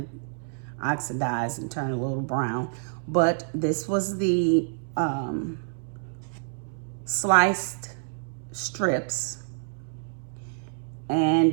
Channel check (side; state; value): left; silent; 59 dB below the other